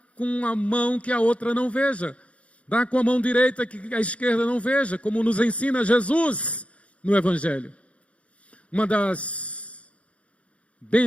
com a mão que a outra não veja. Dá com a mão direita que a esquerda não veja, como nos ensina Jesus no Evangelho. Uma das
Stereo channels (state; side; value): late; right; 0.063 ms